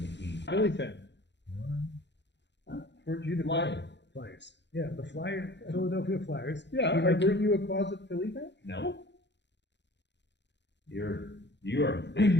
Philly fan. Weren't you the Flyers. Yeah, the Philadelphia Flyers. Yeah, weren't you a closet Philly fan? No. You are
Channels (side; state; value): right; late; 0.51 ms